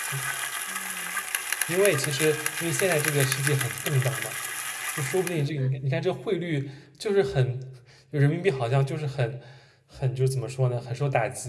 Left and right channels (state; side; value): identical; both; correlation 1.00